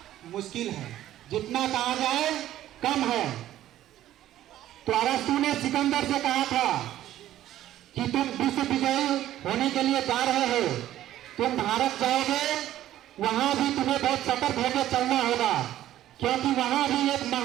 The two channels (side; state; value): left; quieter; 13.1 dB